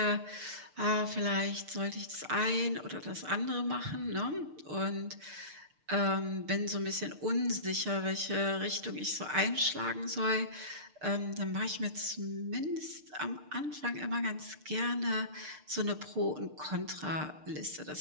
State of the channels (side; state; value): left; late; 6.6 ms